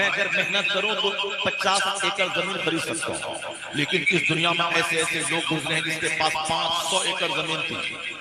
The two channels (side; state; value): both; identical; correlation 1.00